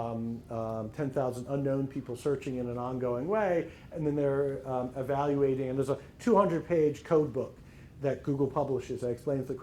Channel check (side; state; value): both; identical; correlation 1.00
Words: unknown people searching in an ongoing way, and then they're evaluating, and there's a 200-page code book that Google publishes that explains the